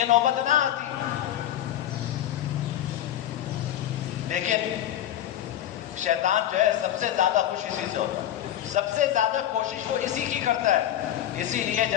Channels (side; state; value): right; quieter; 11.9 dB